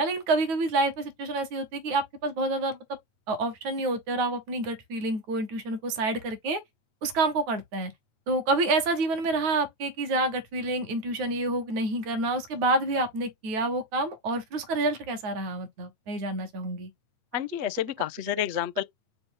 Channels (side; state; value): left; late; 9.3 ms